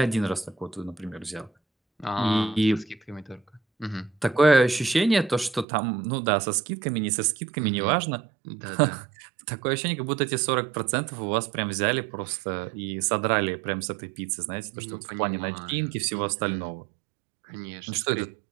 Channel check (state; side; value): drops out; left; at 5.7 s